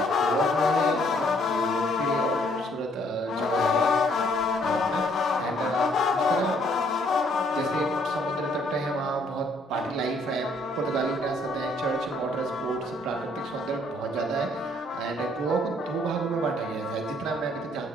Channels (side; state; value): both; normal; correlation 0.65